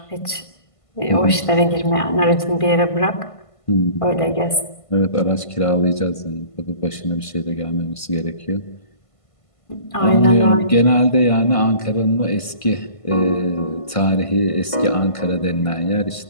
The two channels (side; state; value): right; late; 1.5 ms